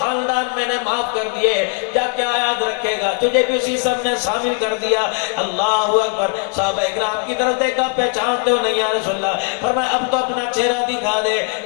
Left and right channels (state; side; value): quieter; right; 38.4 dB